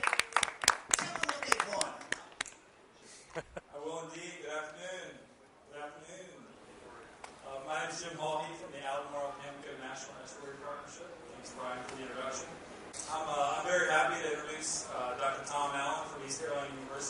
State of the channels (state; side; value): identical; both; correlation 1.00